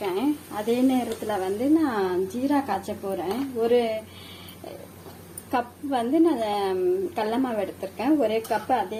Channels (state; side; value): identical; both; correlation 1.00